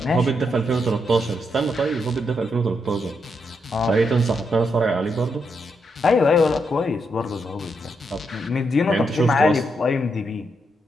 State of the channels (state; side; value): normal; both; correlation 0.80